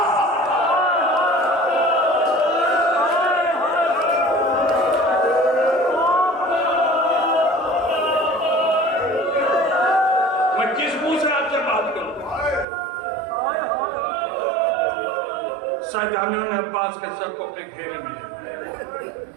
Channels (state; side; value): drops out; left; at 12.7 s